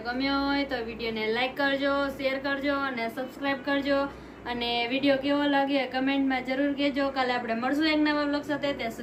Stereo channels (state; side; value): identical; both; correlation 1.00